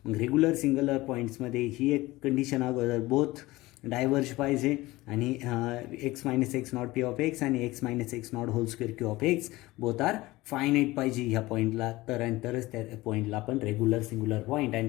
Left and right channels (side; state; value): right; quieter; 19.5 dB